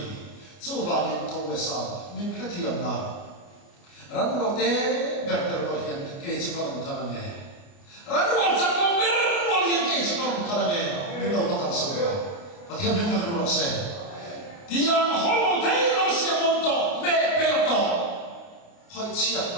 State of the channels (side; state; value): right; late; 29 ms